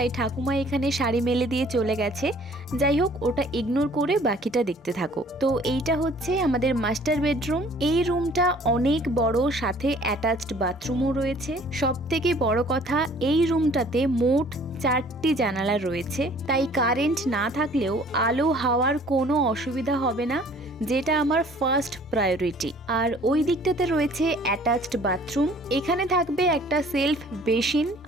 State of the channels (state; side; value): normal; both; correlation 0.54